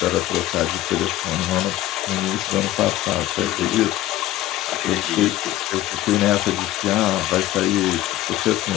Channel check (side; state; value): right; quieter; 14.9 dB